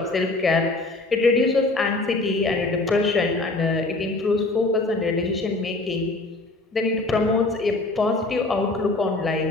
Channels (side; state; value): right; quieter; 3.1 dB